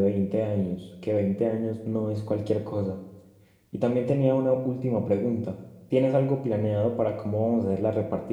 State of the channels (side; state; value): both; identical; correlation 1.00